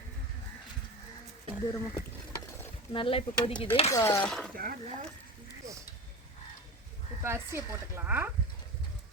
தூரமா நல்லா இப்போ கொதிக்குது. இப்போ அரிசியை போட்டுக்கலாம்.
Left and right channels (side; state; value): both; normal; correlation 0.28